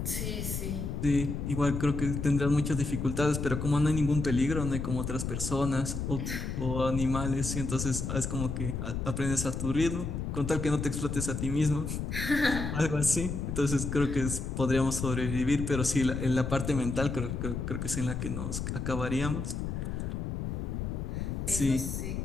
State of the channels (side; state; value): left; noise; rumble, 3 dB below the sound